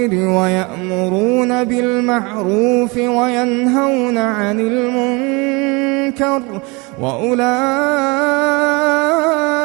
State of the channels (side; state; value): left; quieter; 27.7 dB